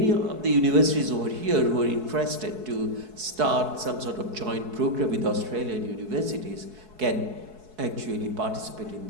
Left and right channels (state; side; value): late; left; 4.7 ms